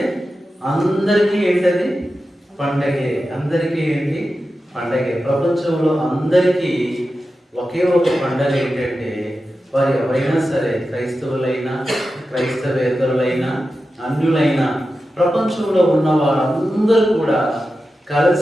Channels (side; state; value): both; normal; correlation 0.92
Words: అందరికీ ఏంటది? పండగే. అందరికీ ఏంటి? పండగే. ప్రపంచంలో అందరికీ ఒకే ఒక పండగ ఏంటంటే, వారు ఎవరైనా సరే, క్రైస్తవులైనా క్రైస్తవేతరులైనా అన్యులైనా ప్రపంచంలో ఉన్న వారందరూ కూడా